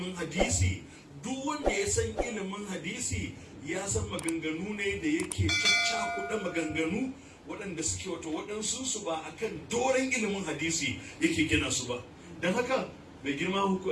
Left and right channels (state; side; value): identical; both; correlation 1.00